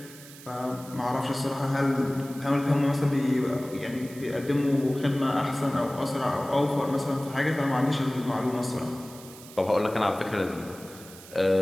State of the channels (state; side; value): noise; right; hiss, 18 dB below the sound